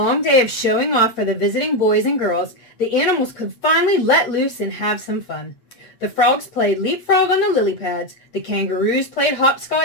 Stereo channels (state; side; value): late; right; 8.3 ms